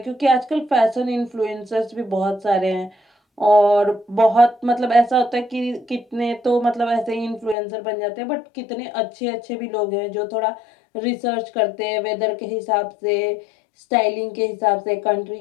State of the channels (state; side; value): drops out; right; at 7.6 s